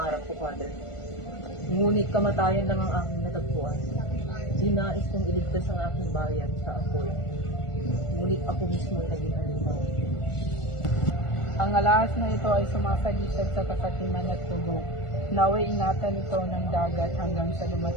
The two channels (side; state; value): right; late; 1.4 ms